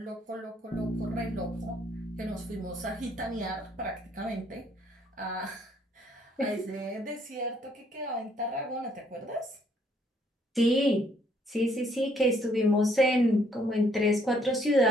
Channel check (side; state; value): both; normal; correlation 0.67